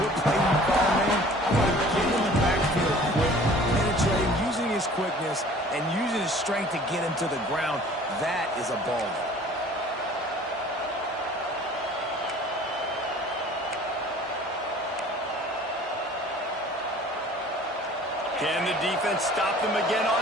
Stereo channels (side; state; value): both; normal; correlation 0.49